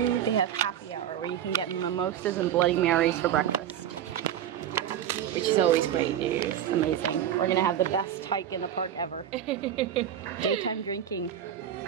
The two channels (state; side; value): quieter; left; 10.1 dB